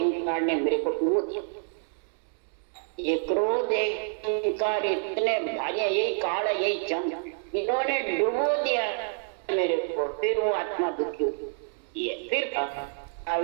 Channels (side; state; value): left; silent; 59 dB below the other